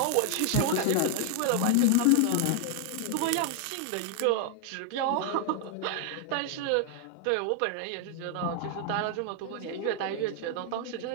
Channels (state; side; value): different; both; correlation 0.00